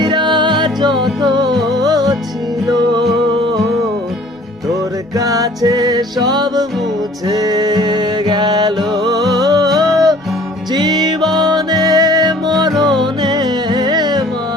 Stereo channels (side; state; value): both; normal; correlation 0.52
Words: যত ছিল, তোর কাছে সব মুছে গেল। জীবনে মরণে